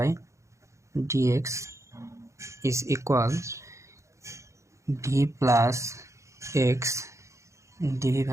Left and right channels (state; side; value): late; left; 0.14 ms